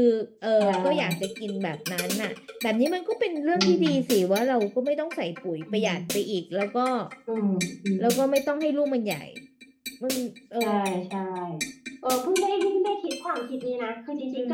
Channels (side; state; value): both; identical; correlation 1.00